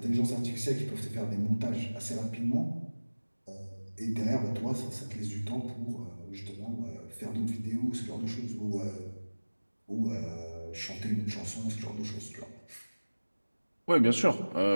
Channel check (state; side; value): inverted; both; correlation -1.00